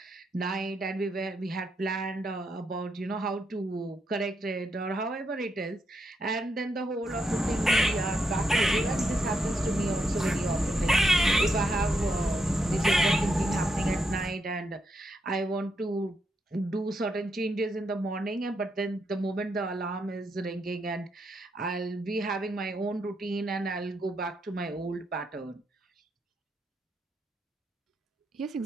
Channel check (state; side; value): normal; both; correlation 0.80